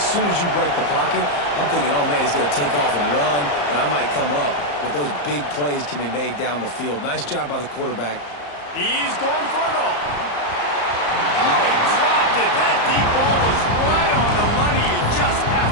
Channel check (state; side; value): late; right; 34 ms